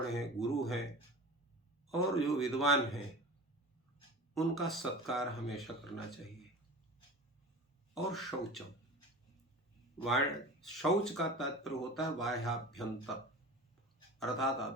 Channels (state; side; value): normal; both; correlation 0.35